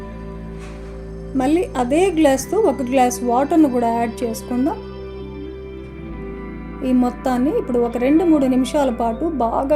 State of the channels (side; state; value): both; identical; correlation 1.00